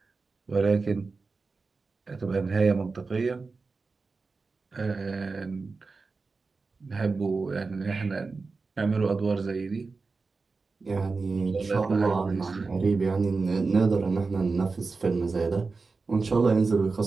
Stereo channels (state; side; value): quieter; left; 4.2 dB